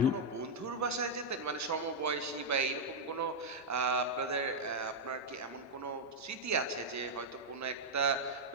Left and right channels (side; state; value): both; normal; correlation -0.02